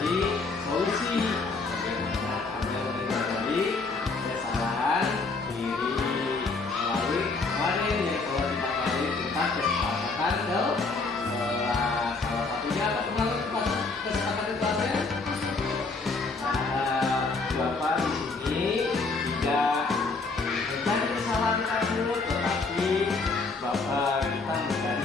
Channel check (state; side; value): quieter; right; 3.9 dB